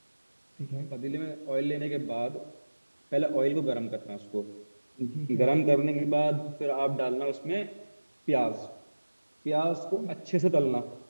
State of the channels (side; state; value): both; inverted; correlation -1.00